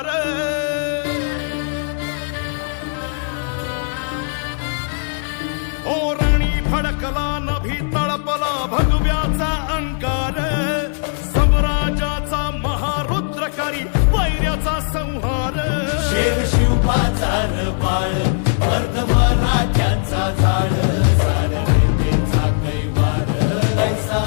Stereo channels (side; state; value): right; silent; 58 dB below the other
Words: ओ रणी फडकला नभी तळपला भगव्याचा अंगार स्वराजाचा महारुद्रकारी वैर्याचा संहार शिवबाचा बाळ वर्ध मराठ्यांचा झाड झाड वैद्येचा कैवार ऐसा